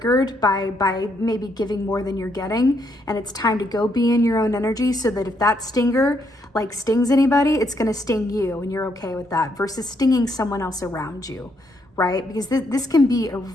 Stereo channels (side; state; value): both; normal; correlation 0.74